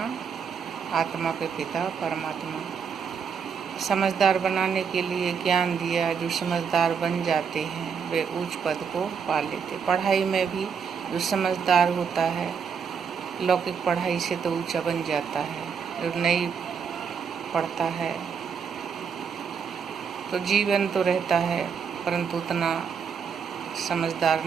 आत्मा के पिता परमात्मा। समझदार बनाने के लिए ज्ञान दिया। जो समझदार बन जाते हैं वे उच्च पद को पा लेते। पढ़ाई में भी जो समझदार होता है लौकिक पढ़ाई से तो ऊंचा बन जाता है। जो नहीं पढ़ता है तो जीवन तो रहता है परंतु उतना समझदार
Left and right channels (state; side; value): quieter; left; 6.5 dB